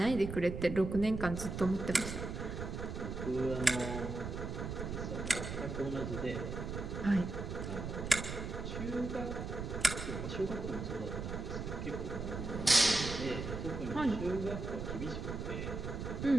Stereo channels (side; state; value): right; noise; rumble, 5 dB below the sound